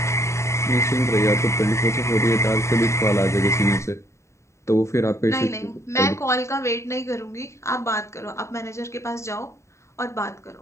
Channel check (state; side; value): late; right; 0.14 ms